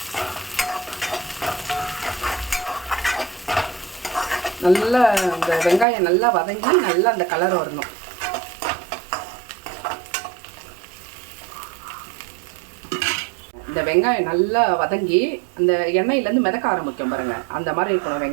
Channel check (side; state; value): left; drops out; at 5.9 s